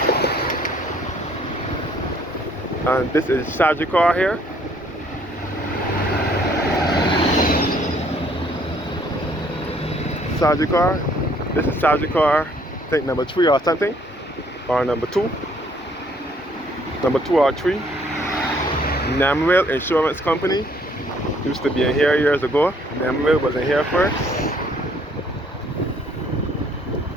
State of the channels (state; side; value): normal; both; correlation 0.63